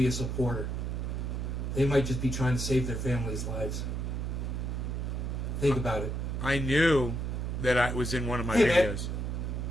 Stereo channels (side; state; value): right; noise; hum, 2 dB below the sound